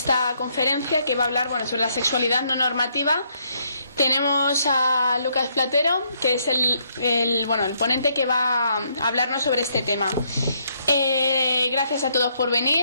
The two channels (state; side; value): inverted; both; correlation -0.72